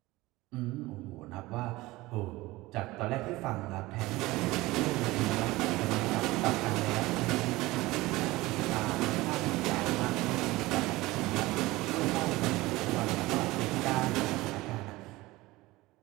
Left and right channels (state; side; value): quieter; left; 19.7 dB